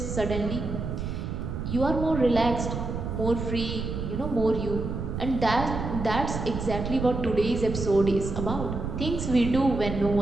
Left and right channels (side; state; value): right; noise; rumble, 4 dB below the sound